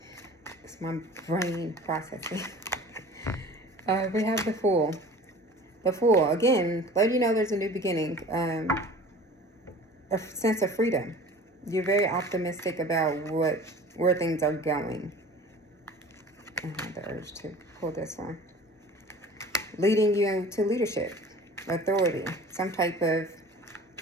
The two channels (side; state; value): both; normal; correlation 0.43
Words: It's my brain processing. We have the Fool. The Fool, again, let you know there's a new beginning. A sense of freedom. You're very optimistic about where things are going. I have the urge to pull this one. Leading you to leadership, authority, some type of...